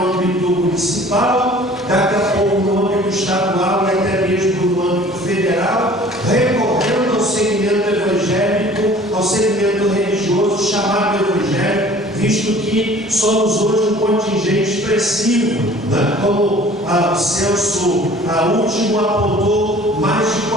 âmbito municipal, daqui a pouco no âmbito estadual e até mesmo no âmbito federal, recorrendo ao segmento evangélico, ao segmento religioso chamado evangélico, visto que somos hoje um contingente expressivo, né? Como o censo último apontou, mais de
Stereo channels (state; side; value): normal; both; correlation 0.49